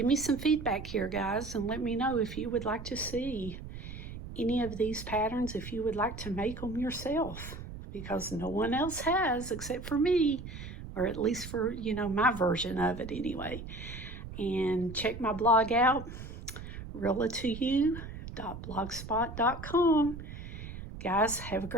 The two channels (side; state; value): right; noise; rumble, 11 dB below the sound